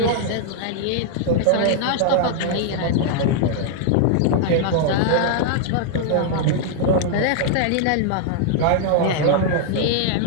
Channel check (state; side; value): different; both; correlation -0.01